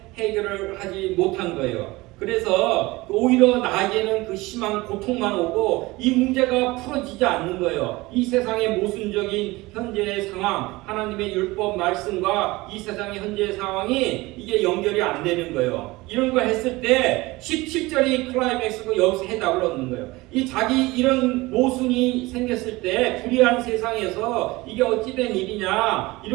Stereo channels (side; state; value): left; quieter; 21.1 dB